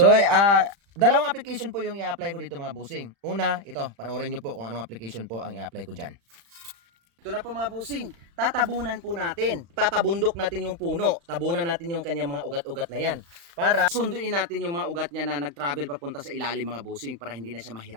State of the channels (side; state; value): left; late; 35 ms